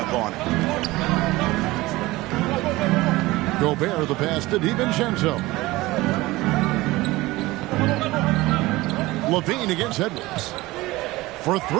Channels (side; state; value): left; quieter; 19.6 dB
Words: on it. Gobert the pass to DiVincenzo. Levine against Edwards. For